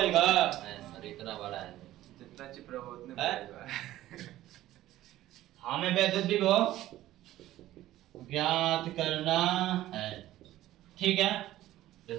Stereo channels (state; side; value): quieter; left; 14.7 dB